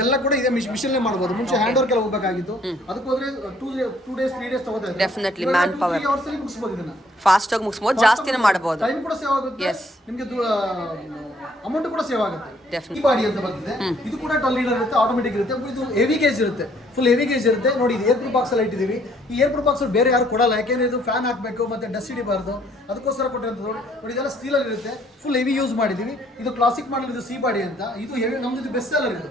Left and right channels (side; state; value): both; normal; correlation 0.63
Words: ಕೂಡ ಇದೆ ಮಿಷನ್ ಮಾಡಬಹುದು. ಮುಂಚೆ ಹ್ಯಾಂಡ್ ವರ್ಕ್ ಎಲ್ಲ ಹೋಗಬೇಕಾಗಿತ್ತು. ಅದಕ್ಕೆ ಹೋದ್ರೆ 2 days 3 days ತಗೋತಾ ಇದೆ. Definitely man power. 3 ಅವರ್ಸ್ ಅಲ್ಲಿ ಮುಗಿಸಬಹುದು. ಇದನ್ನ ಫಾಸ್ಟ್ ಆಗಿ ಮುಗಿಸಬಹುದು, ಜಾಸ್ತಿನೇ ಮಾಡಬಹುದು. ಟೈಮ್ ಕೂಡ ಸೇವ್ ಆಗುತ್ತೆ, ನಿಮಗೆ ಅಮೌಂಟ್ ಕೂಡ ಸೇವ್ ಆಗುತ್ತೆ. ಈ ಬಾಡಿ ಅಂತ ಬಂದಿದೆ. ಇದು ಕೂಡ 12 ಲೀಡರ್ ಇರುತ್ತೆ, ಆಟೋಮೆಟಿಕ್ ಇರುತ್ತೆ. ಇದು ಹೆವಿ ಗೇಜ್ ಇರುತ್ತೆ, ಫುಲ್ ಹೆವಿ ಗೇಜ್ ಇರುತ್ತೆ. ನೋಡಿ ಇದು ಏರ್ ಪ್ರೂಫ್ ಬಾಕ್ಸ್ ಅಲ್ಲಿ ಇಟ್ಟಿದ್ದೀವಿ. ಈ ಏರ್ ಪ್ರೂಫ್ ಬಾಕ್ಸ್ ಬೇರೆ ಯಾರು ಕೊಡಲ್ಲ, ಯಾಕೆಂದ್ರೆ ಇದು ಫ್ಯಾನ್ ಹಾಕಬೇಕು ಮತ್ತೆ ಡಸ್ಟ್ ಹಿಡಿಬಾರ್ದು, ಅದಕ್ಕೋಸ್ಕರ ಕೊಟ್ಟಿರೋದು. ನೋಡಿ ಇದೆಲ್ಲ ಸ್ಟೀಲ್ ಅಲ್ಲಿ ಇರುತ್ತೆ, ಫುಲ್ ಹೆವಿ ಯೂಸ್ ಮಾಡಿದೀವಿ. ಇದು ಕ್ಲಾಸಿಕ್ ಮಾಡಲ್, ಇದು ಸಿ ಬಾಡಿ ಅಂತ. ಇದು ಹೆವಿ, ನಮ್ದು ಇದು ಬೆಸ್ಟ್ ಸೆಲ್ಲರ್.